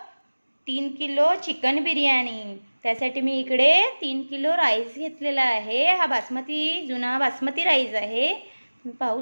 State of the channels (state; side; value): inverted; both; correlation -1.00